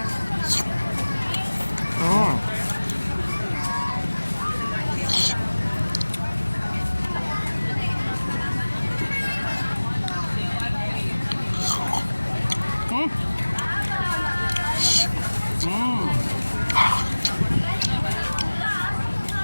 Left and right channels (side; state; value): both; inverted; correlation -1.00